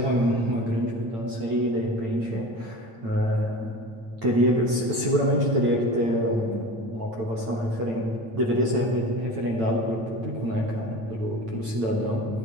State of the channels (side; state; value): left; late; 8.9 ms